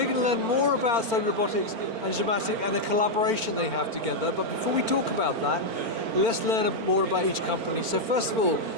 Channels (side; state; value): left; late; 4.4 ms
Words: going to learn more about STÄUBLI Robotics and GIMATIC and the collaboration they have together, but before we talk about that, let's learn more about each company. So first of all,